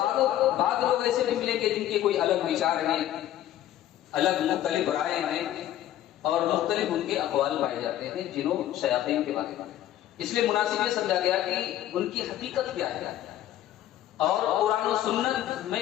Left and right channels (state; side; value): quieter; right; 12.6 dB